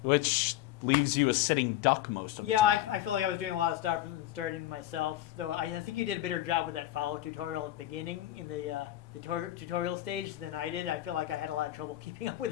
which leaves you a sitting duck most of the Yeah, time. I feel like I was doing a lot of stuff and starting myself. Though I think you did a better job with that follow tutorial at the beginning in the tutorial stage than I did. I feel like I had a lot of trouble keeping up with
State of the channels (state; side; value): quieter; right; 13.9 dB